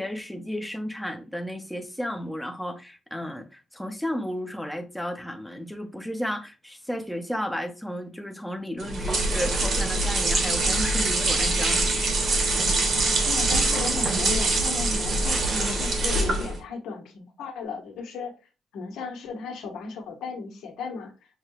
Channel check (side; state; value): both; normal; correlation 0.77